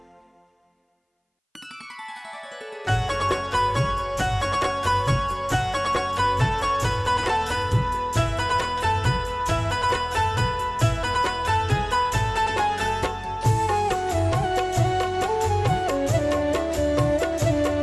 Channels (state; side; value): identical; both; correlation 1.00